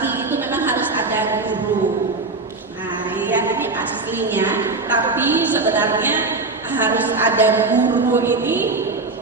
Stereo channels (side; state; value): left; quieter; 3.6 dB